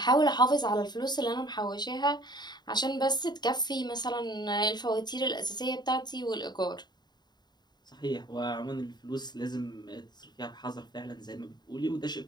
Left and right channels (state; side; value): late; right; 0.21 ms